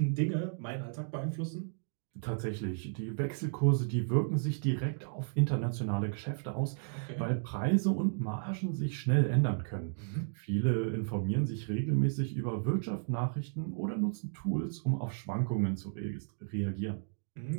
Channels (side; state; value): left; silent; digital silence